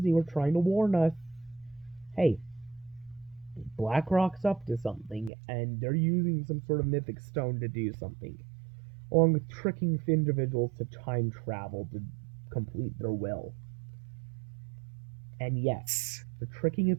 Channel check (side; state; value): left; drops out; at 5.3 s